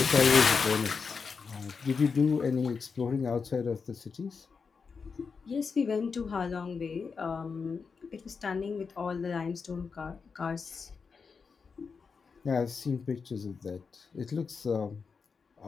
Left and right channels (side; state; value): right; quieter; 5.3 dB